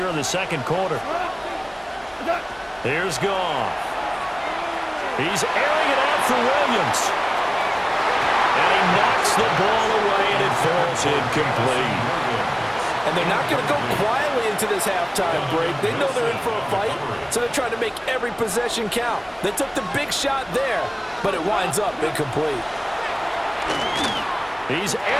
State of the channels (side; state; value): both; identical; correlation 1.00